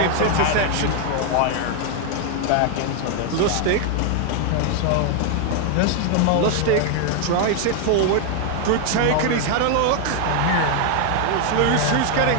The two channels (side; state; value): both; different; correlation 0.01